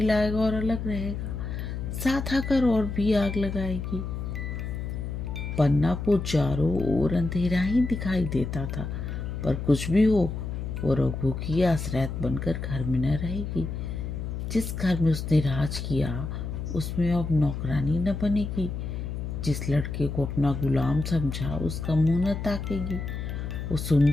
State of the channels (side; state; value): left; noise; hum, 5 dB below the sound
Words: लाएगा और अलग रहेगा, साथ आकर और भी आग लगाएगी। पन्ना को चारों ओर अंधेरा ही दिखाई देता था, पर कुछ भी हो वो रघु की आश्रयत बनकर घर में न रहेगी। जिस घर में उसने राज किया उसमें अब नौकरानी न बनेगी। जिस लड़के को अपना गुलाम समझा उसका मुंह न ताकेगी। वो